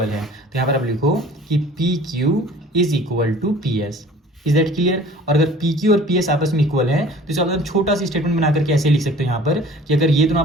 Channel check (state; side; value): normal; both; correlation 0.47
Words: है। तो यहाँ पर आप लिखो कि P Q is equal to P S. Is that clear? और अगर पी क्यू और पी एस आपस में इक्वल है तो इसका मतलब छोटा सी स्टेटमेंट बना करके ऐसे लिख सकते हो यहाँ पर कि अगर ये दोनों